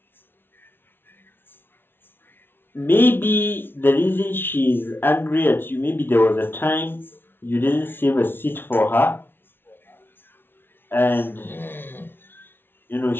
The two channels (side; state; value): right; late; 0.11 ms